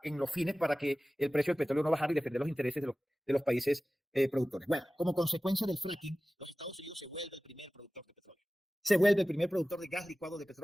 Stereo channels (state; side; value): normal; both; correlation 0.96